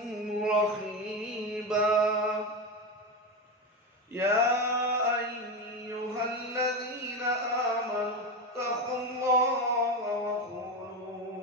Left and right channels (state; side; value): normal; both; correlation 0.17